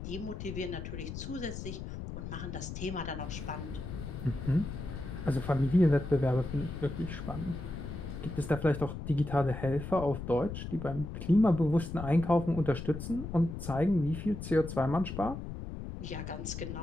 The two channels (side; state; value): left; noise; rumble, 8 dB below the sound